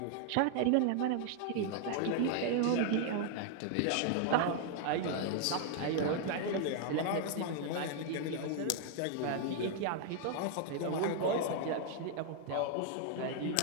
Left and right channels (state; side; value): different; both; correlation 0.00